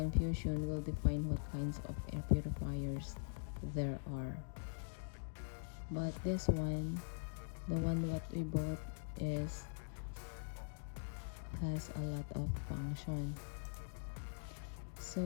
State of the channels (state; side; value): silent; right; digital silence